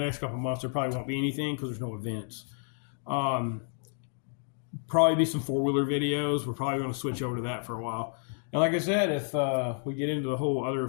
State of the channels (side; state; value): right; silent; 58 dB below the other